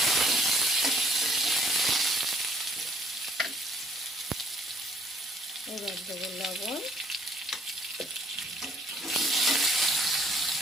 এবার দেবো লবণ,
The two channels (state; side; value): normal; both; correlation 0.64